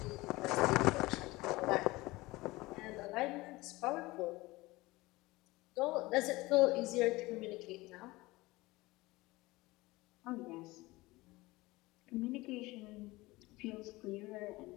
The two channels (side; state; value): right; quieter; 20.7 dB